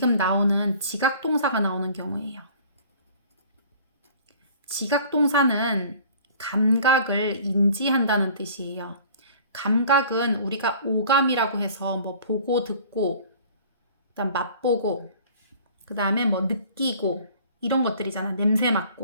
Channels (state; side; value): inverted; both; correlation -0.49